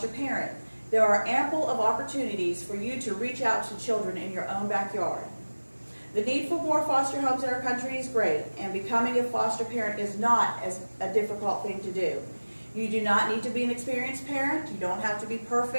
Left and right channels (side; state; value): both; inverted; correlation -1.00